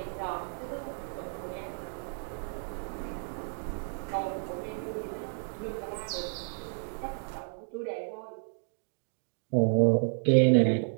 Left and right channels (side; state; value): left; silent; digital silence